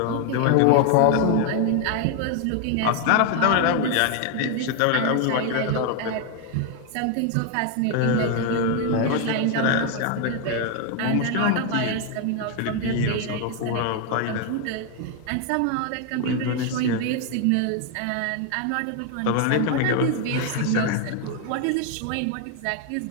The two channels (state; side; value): different; both; correlation 0.01